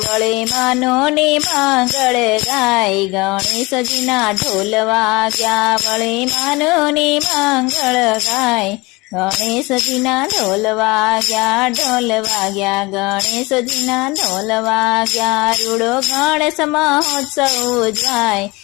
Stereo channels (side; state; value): right; quieter; 23.8 dB